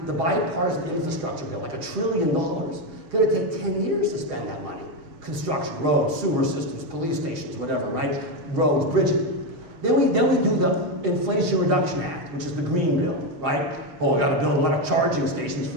the bipartisan infrastructure bill, like $1 trillion. It's going to take 10 years to spend that money. Construction, roads, sewer systems, police stations, whatever, right? Roads, bridges. Then we do the Inflation Reduction Act, which is the green bill, right? Oh, I got to build a lot of charging stations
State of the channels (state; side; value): late; left; 6.4 ms